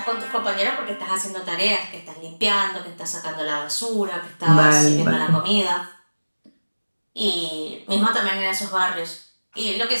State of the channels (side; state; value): both; inverted; correlation -1.00